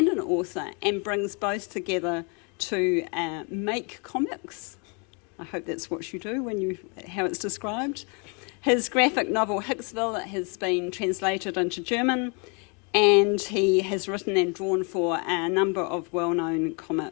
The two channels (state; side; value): quieter; right; 33.2 dB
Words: an author and brings both together to make comics. I hope that's what you do how it's described. His graphic novel Hicksville has been translated into German, and he has written and drawn for a number of well-known